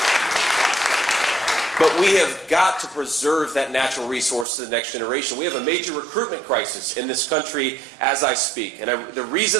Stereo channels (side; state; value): left; drops out; at 4.5 s